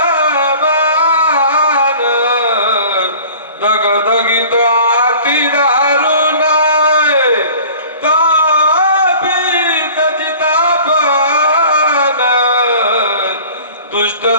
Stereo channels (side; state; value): both; inverted; correlation -0.45